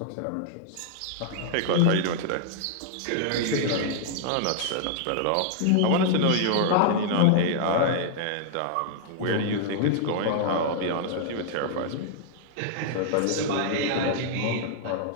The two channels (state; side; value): different; both; correlation -0.01